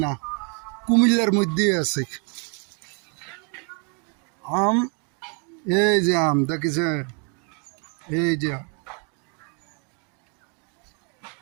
না, কুমিল্লার মধ্যেই আছে আম। এই যে আম দেখেছে, এই যে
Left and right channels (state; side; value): quieter; left; 36.8 dB